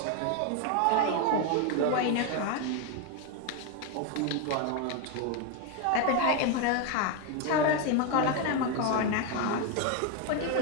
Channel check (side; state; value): both; different; correlation 0.02